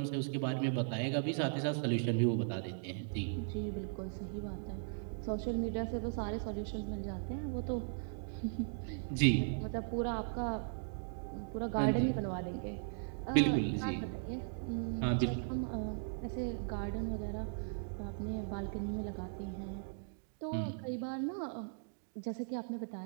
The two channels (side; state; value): left; silent; digital silence